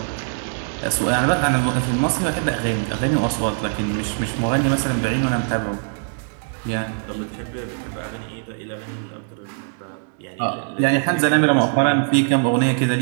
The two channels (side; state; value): left; silent; 64 dB below the other